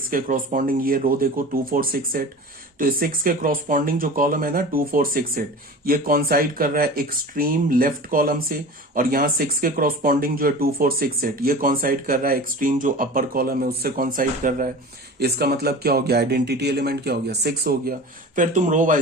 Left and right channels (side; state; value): both; normal; correlation 0.35